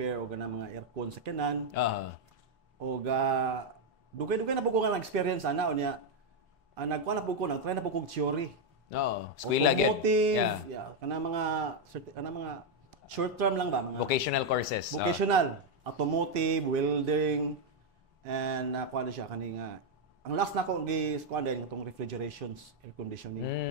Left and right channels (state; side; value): normal; both; correlation 0.01